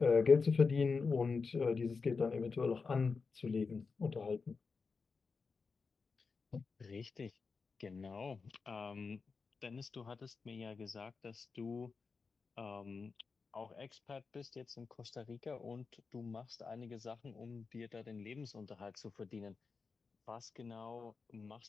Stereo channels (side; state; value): right; quieter; 4.8 dB